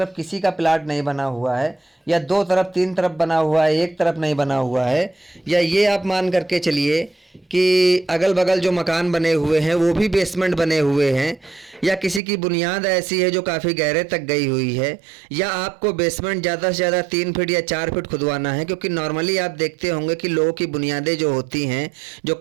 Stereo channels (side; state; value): left; drops out; at 12.2 s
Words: किसी का प्लाट नहीं बना हुआ है, या 2 तरफ 3 तरफ बना हुआ है, एक तरफ नहीं बना हुआ है, या ये आप मान करके चलिए कि अगल बगल जो मकान बने हुए हैं वो भी बेसमेंट बने हुए हैं, या किसी की बुनियाद ऐसी है जो काफ़ी गहरे तक गई हुई है, या आपको बेसमेंट ज़्यादा से ज़्यादा 3 फीट या 4 फीट खुदवाना है, क्योंकि नॉर्मली आप देखते होंगे कि लोगों की बुनियादें जो होती हैं, जो